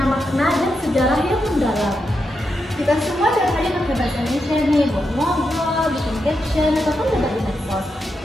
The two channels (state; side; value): normal; both; correlation 0.85